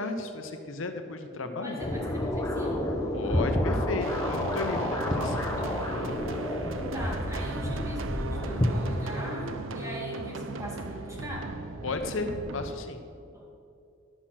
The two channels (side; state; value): both; normal; correlation 0.54